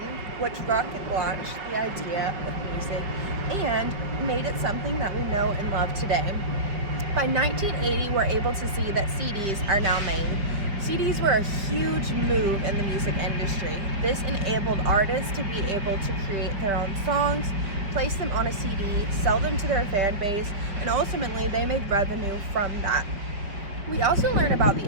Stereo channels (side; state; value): left; late; 4.9 ms